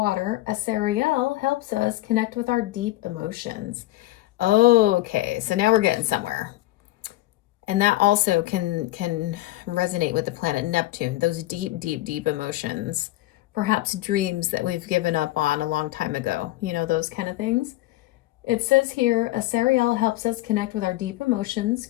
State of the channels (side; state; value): right; quieter; 17.2 dB